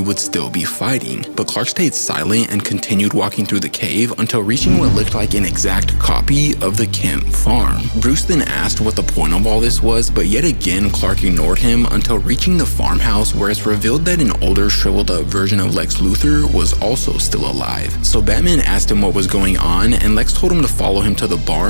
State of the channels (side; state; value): both; inverted; correlation -1.00